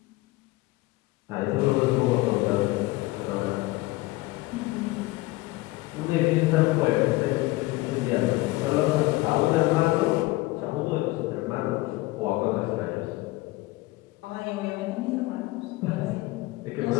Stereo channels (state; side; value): quieter; right; 20.1 dB